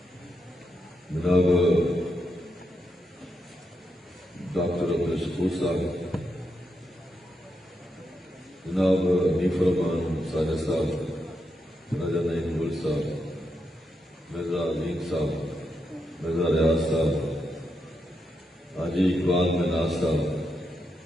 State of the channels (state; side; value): normal; both; correlation 0.83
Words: جناب ڈاکٹر عبدالشکور صاحب، جناب حنیف الرحمان ساجد صاحب، راجہ نعیم گل صاحب، مرزا عظیم صاحب، مرزا ریاض صاحب، حاجی اقبال مناز صاحب،